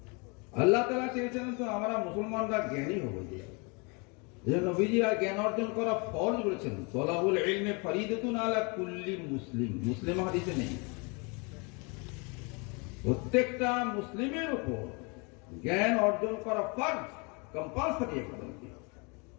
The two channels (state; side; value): quieter; right; 31.8 dB